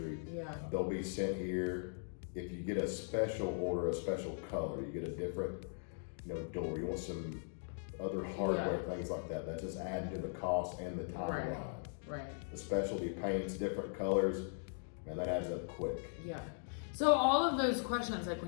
Yeah. They'll be sent here. If you get a special order, a special color, you get a different, you know, door. You want some other hardware, things like that. That's just added to the cost and the timeline. Right. The specialty paints, different colors, man, that adds up quick. Yeah. So all of those questions, like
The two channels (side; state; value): right; silent; digital silence